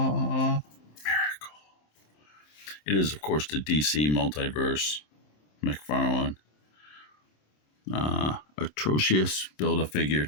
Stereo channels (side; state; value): right; late; 27 ms